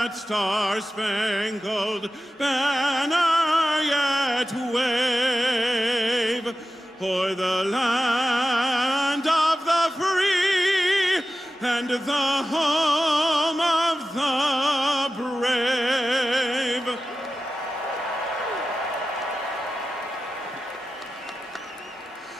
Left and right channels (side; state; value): both; normal; correlation 0.93